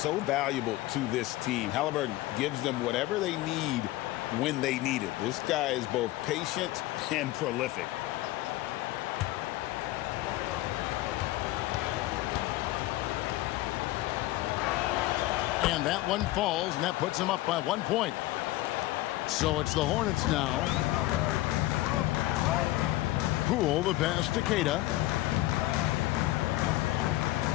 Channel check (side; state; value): right; quieter; 17.3 dB